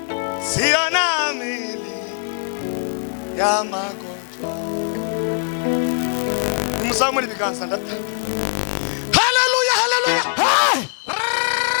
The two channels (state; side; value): silent; right; 64 dB below the other